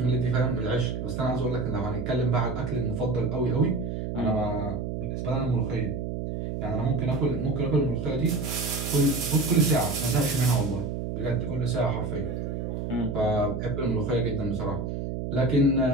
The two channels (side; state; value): right; noise; hum, 4 dB below the sound